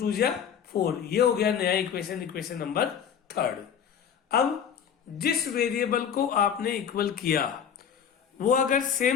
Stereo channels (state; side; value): quieter; right; 8.0 dB